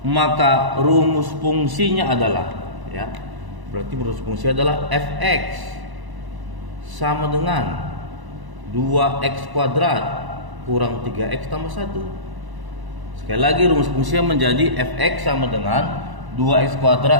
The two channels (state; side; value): late; left; 1.0 ms